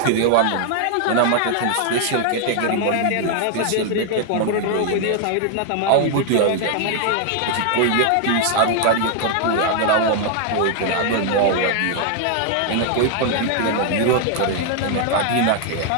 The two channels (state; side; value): different; both; correlation 0.00